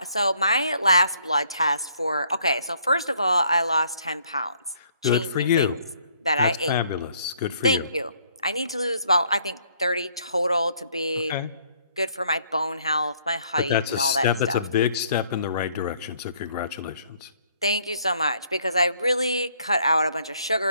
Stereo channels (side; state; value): both; inverted; correlation -0.65